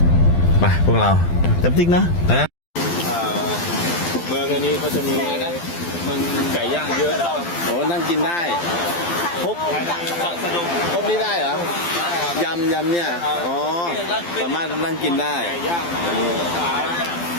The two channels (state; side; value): late; right; 12 ms